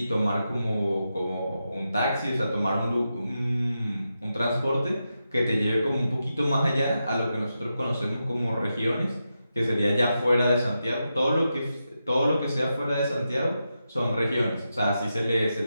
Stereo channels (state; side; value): inverted; both; correlation -0.88